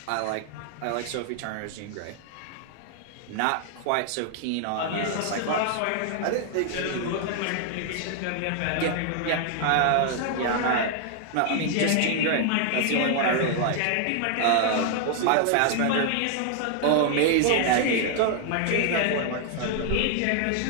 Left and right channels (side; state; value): both; different; correlation 0.00